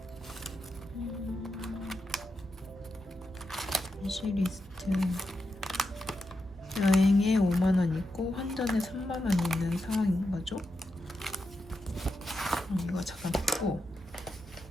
위시리스트 여행에 5만원 있고 환전에 3만원 있는 상황인 거죠. 이거 잠깐 듣고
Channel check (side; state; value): both; normal; correlation 0.87